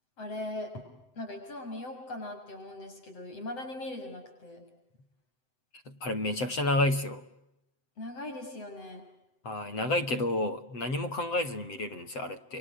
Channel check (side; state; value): right; late; 7.8 ms